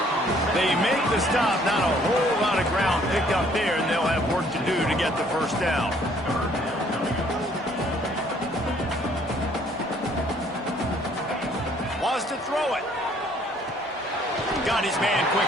They make the stop. Not a whole lot of ground picked up there, and they'll have work to do to get the first down. Wants to throw it. Got his man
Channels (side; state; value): both; normal; correlation 0.61